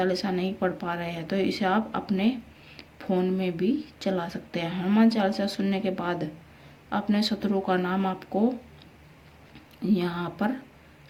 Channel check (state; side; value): identical; both; correlation 1.00